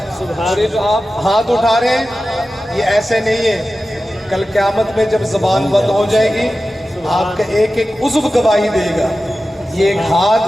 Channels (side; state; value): both; normal; correlation 0.94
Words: اور یہ جو آپ ہاتھ اٹھا رہے ہیں یہ ایسے نہیں ہے، کل قیامت میں جب زبان بند ہو جائے گی آپ کا ایک ایک عضو گواہی دے گا، یہ ایک